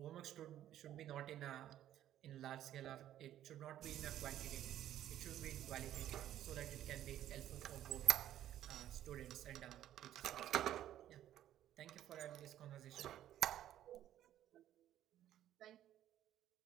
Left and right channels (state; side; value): quieter; left; 12.0 dB